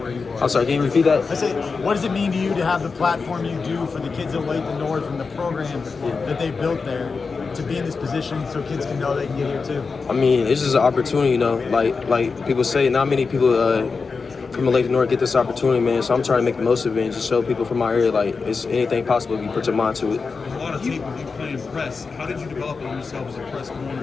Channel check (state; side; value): quieter; right; 4.7 dB